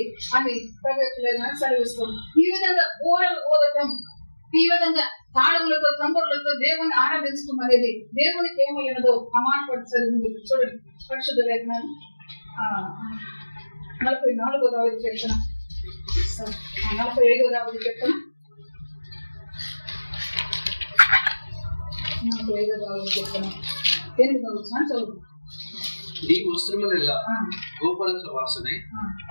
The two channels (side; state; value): both; inverted; correlation -1.00